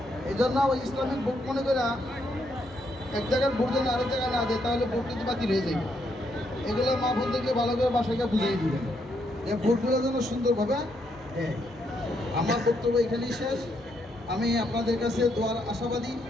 এই জন্য ওই ইসলামিক ভোট মনে করে এক জায়গার ভোট যেন আরেক জায়গায় না যায়, তাহলে ভোট কিন্তু বাতিল হয়ে যাবে। এগুলো মা বোনদেরকে ভালো করে বাসাকে বুঝিয়ে দিবেন যে ভোটগুলো যেন সুন্দরভাবে দেয়। আমার বক্তব্য এখানেই শেষ। আমি আপনাদের কাছে দোয়ার আশাবাদী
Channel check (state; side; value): normal; both; correlation 0.76